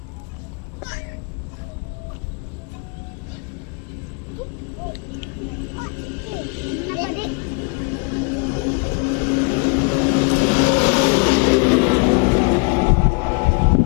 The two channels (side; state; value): right; quieter; 34.8 dB